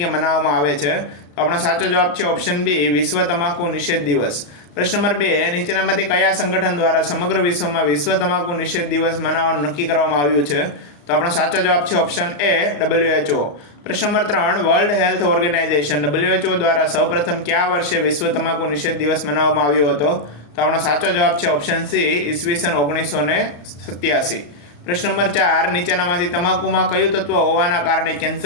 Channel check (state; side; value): late; right; 34 ms